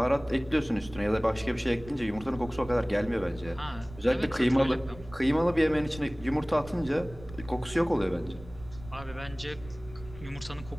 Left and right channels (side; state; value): right; noise; rumble, 17 dB below the sound